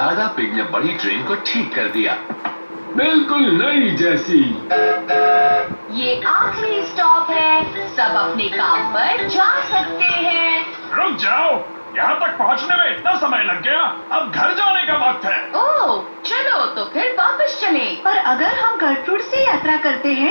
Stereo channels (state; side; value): inverted; both; correlation -1.00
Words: पिग ने बड़ी ट्रेन को ठीक कर दिया, बिल्कुल नई जैसी। ये आखिरी स्टॉप है, सब अपने काम पर जा सकते हैं। रुक जाओ, यहाँ तक पहुँचने में इतना समय लग गया, अब घर जाने का वक्त है। ओह, चलो तो फिर वापस चलें। पर अगर हम गर्ट्रूड से यात्रा करते